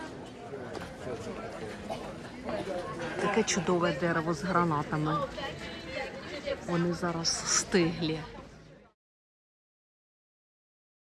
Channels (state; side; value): identical; both; correlation 1.00